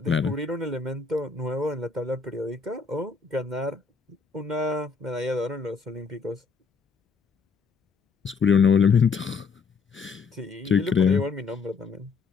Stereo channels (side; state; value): right; quieter; 5.1 dB